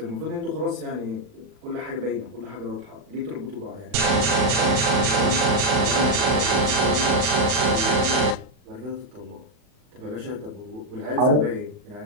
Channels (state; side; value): late; left; 39 ms